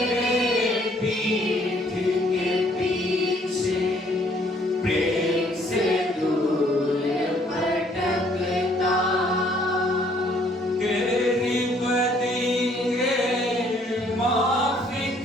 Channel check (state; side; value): normal; both; correlation 0.63